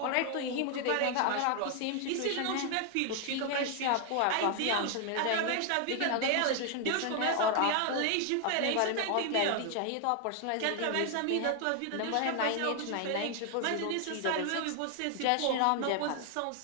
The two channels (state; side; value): different; both; correlation 0.00